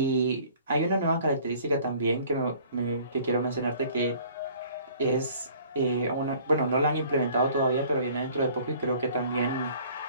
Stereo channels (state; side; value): inverted; both; correlation -0.53